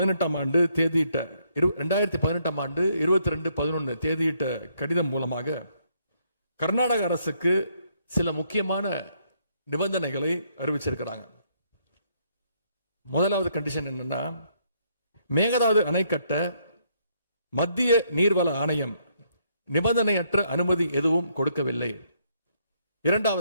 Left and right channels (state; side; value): inverted; both; correlation -0.72